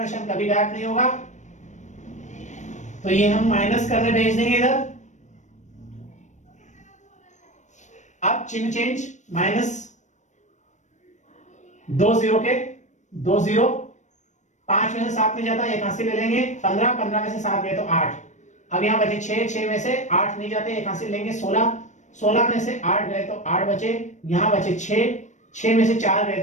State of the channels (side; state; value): right; late; 0.35 ms